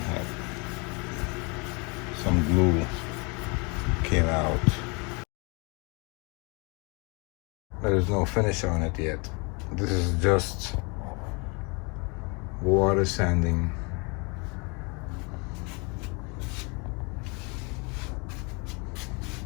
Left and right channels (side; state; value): right; quieter; 31.2 dB